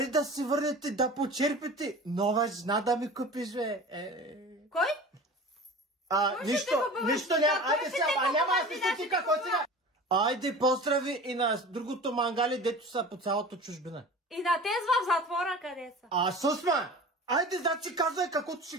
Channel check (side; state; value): both; normal; correlation 0.37